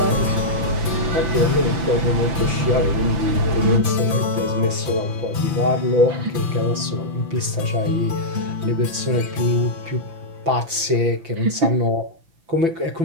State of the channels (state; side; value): late; left; 6.0 ms